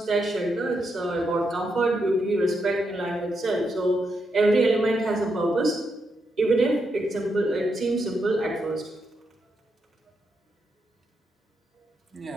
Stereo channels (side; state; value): both; normal; correlation 0.82